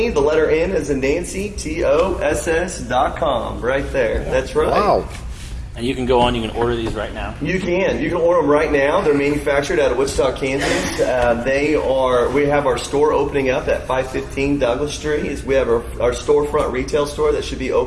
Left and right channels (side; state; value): both; identical; correlation 1.00